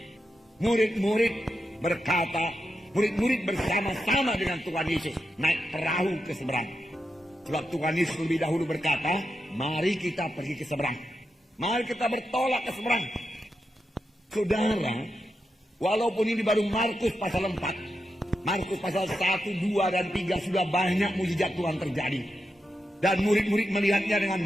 Murid-murid berkata, murid-murid bersama-sama dengan Tuhan Yesus naik perahu ke seberang. Sebab Tuhan Yesus lebih dahulu berkata, mari kita pergi ke seberang. Mari kita bertolak ke seberang. Saudara, walaupun ini baru Markus pasal 4. Markus pasal 1, 2, dan 3 sudah banyak mujizat Tuhan terjadi. Dan murid-murid melihatnya dengan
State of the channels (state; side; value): normal; both; correlation 0.87